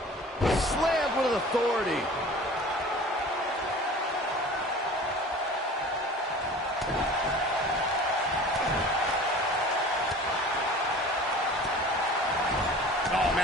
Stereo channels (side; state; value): both; normal; correlation 0.42